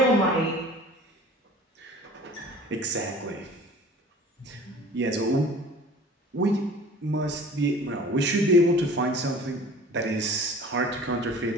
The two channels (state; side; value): normal; both; correlation 0.45